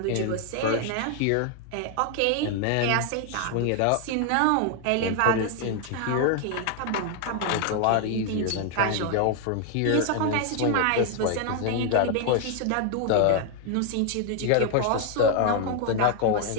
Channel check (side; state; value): both; different; correlation 0.00